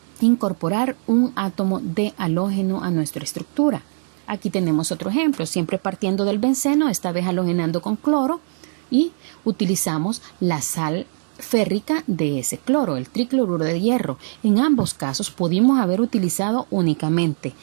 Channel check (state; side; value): silent; left; digital silence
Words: incorporar un átomo de halógeno a nuestra estructura. Aquí tenemos otro ejemplo, siempre partiendo del benceno, esta vez halogenando con cloro, y utilizamos la sal férrica de ese cloro, el tricloruro de hierro. En ambos casos pudimos haber utilizado únicamente